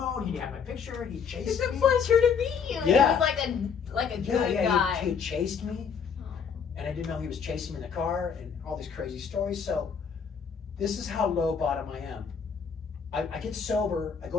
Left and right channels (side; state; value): right; quieter; 6.5 dB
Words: He had my picture. He chased It's a me. pleasure to meet you. Yeah. He was like a good guy. He had chased me, and I didn't know he was chasing me in the car, and all these crazy stories. So this is how low bottom I am. I get sober. I go